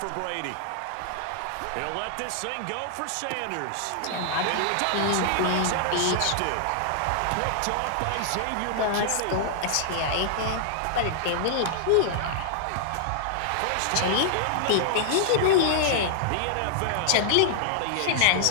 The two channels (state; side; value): different; both; correlation -0.01